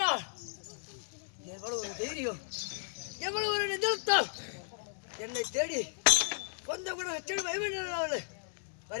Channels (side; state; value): right; silent; digital silence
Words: எவ்வளவு ஒரு தைரியம், எவ்வளவு ஒரு நிதர்த்தம். என்னை தேடி கொஞ்சம் கூட செடு பயமேன்